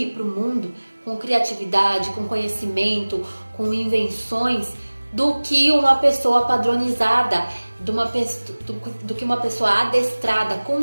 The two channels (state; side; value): inverted; both; correlation -1.00